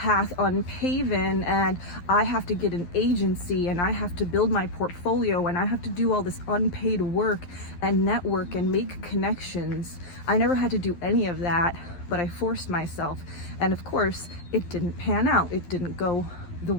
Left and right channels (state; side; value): late; right; 11 ms